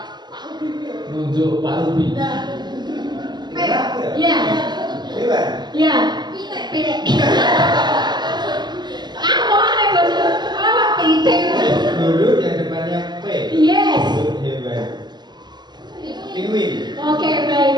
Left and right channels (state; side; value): late; left; 0.21 ms